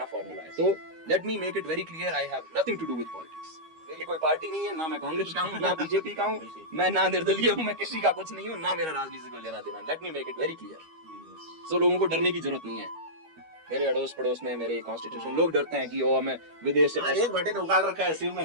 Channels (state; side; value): late; left; 12 ms